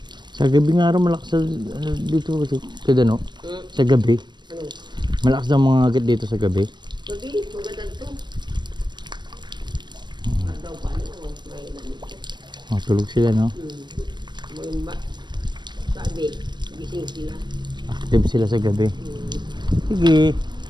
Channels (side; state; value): left; late; 0.22 ms